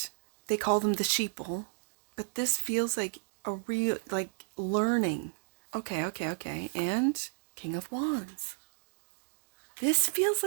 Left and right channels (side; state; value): left; silent; digital silence